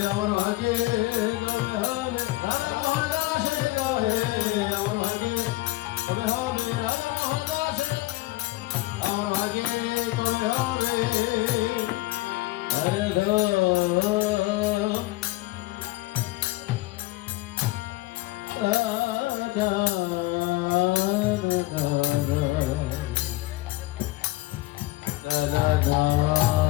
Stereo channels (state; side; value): quieter; right; 19.7 dB